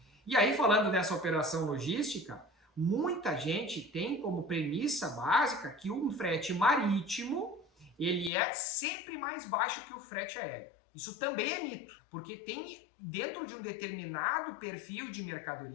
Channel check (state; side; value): drops out; right; at 8.3 s